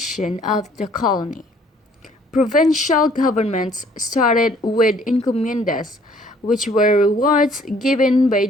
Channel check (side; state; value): both; normal; correlation 0.60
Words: of the colony. Provincial governments started with encomiendas, which were rewards given by